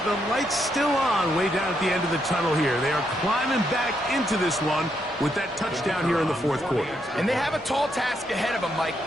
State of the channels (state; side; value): normal; both; correlation 0.78